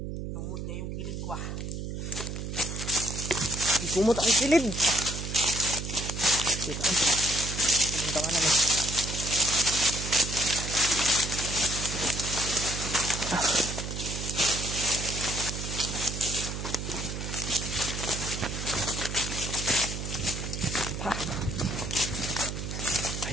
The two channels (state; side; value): noise; right; hum, 5 dB below the sound